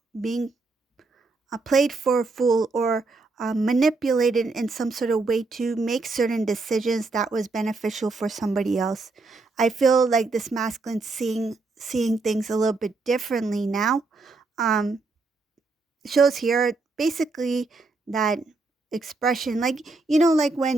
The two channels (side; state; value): left; quieter; 3.7 dB